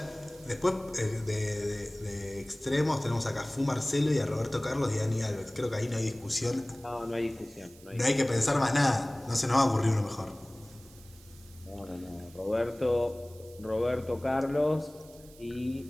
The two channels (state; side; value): noise; right; hiss, 23 dB below the sound